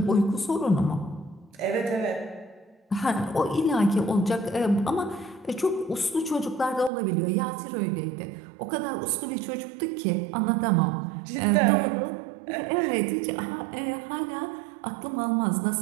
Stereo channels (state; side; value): drops out; left; at 6.9 s